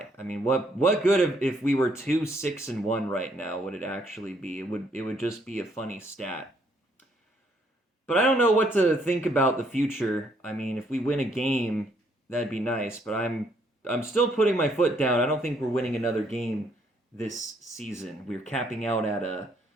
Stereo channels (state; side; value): normal; both; correlation 0.69